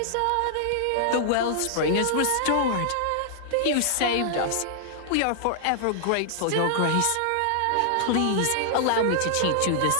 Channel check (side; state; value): both; different; correlation -0.01